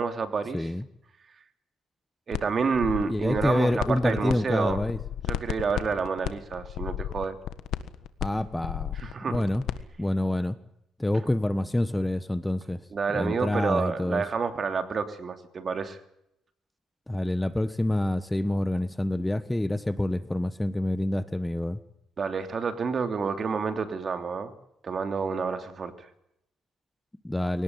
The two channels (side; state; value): both; normal; correlation 0.89